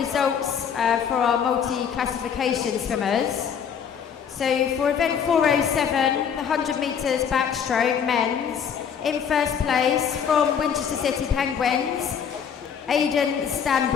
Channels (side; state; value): right; quieter; 7.5 dB